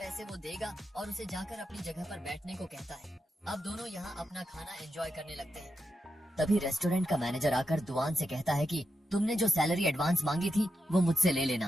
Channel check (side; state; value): both; normal; correlation 0.86